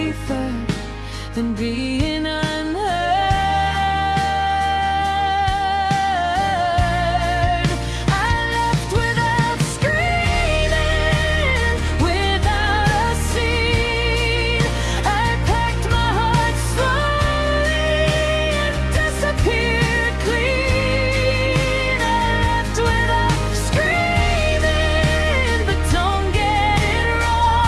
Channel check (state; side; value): identical; both; correlation 1.00